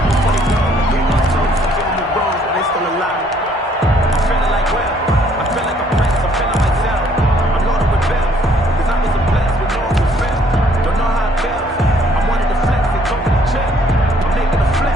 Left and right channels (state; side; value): normal; both; correlation 0.63